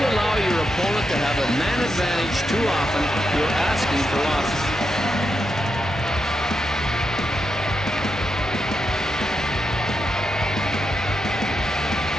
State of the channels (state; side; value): normal; both; correlation 0.84